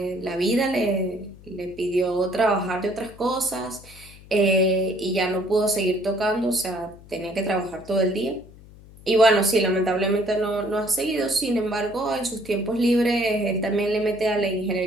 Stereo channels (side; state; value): left; noise; hum, 21 dB below the sound